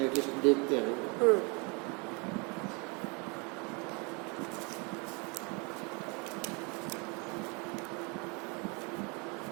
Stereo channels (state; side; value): quieter; left; 31.5 dB